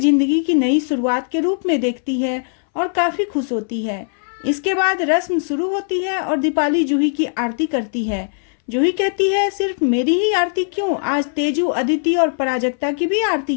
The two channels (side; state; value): right; silent; 63 dB below the other